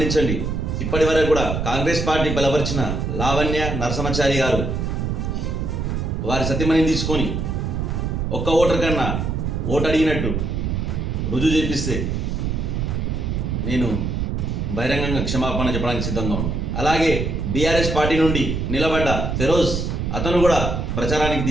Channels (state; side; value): noise; right; rumble, 1 dB below the sound